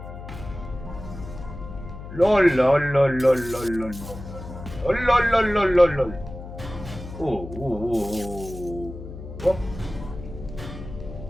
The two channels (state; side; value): noise; left; hum, 12 dB below the sound